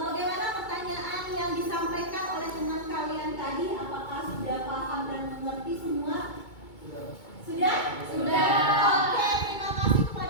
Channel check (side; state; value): right; late; 2.2 ms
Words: pertanyaan yang disampaikan oleh teman kalian tadi? Apakah sudah paham dan mengerti semua? Sudah? Sudah. Oke, terima kasih